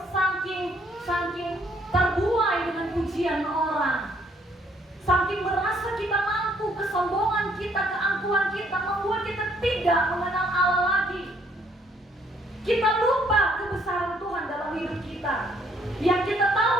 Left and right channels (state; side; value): normal; both; correlation 0.66